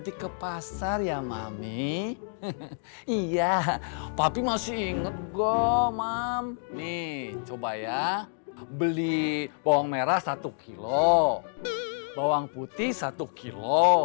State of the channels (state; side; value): silent; right; digital silence